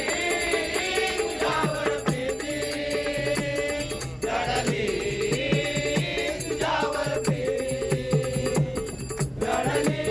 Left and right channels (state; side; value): identical; both; correlation 1.00